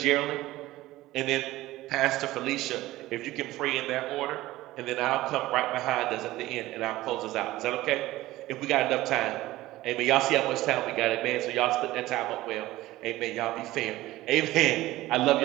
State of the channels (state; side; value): quieter; left; 17.0 dB